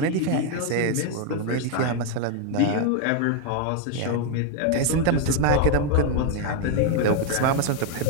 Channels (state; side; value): different; both; correlation 0.01